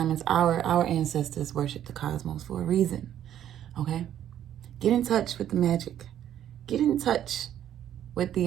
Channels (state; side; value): quieter; left; 10.9 dB